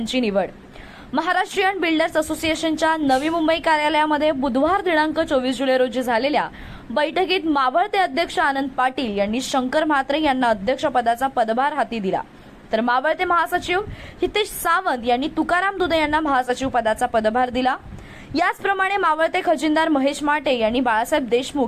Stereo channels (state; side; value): identical; both; correlation 1.00